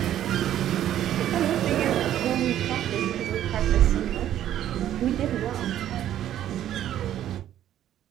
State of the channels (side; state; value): left; quieter; 11.6 dB